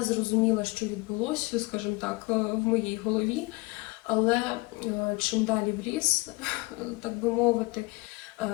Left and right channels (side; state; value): right; quieter; 24.5 dB